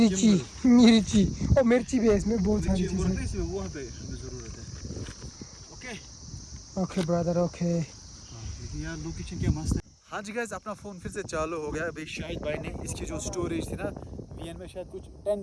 और मिर्ची भी है इसमें, बहुत सारी चीजें। इसमें वहाँ पे हमें ज़रूरत है। Okay okay brother okay. लेकिन यार लोकेशन क्या मस्त है। हाँ जी गाइस, अपना फ़ोन फिर से चालू हो गया। अभी शाहिद भाई ने इसकी जो स्टोरेज थी ना, VN में शायद कुछ 10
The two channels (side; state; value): both; identical; correlation 1.00